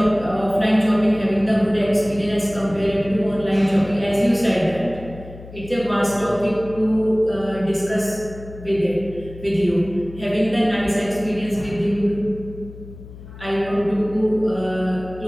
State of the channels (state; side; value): noise; left; hum, 16 dB below the sound